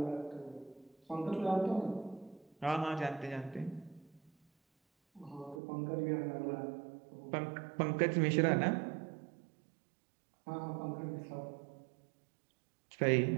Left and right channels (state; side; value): drops out; left; at 5.6 s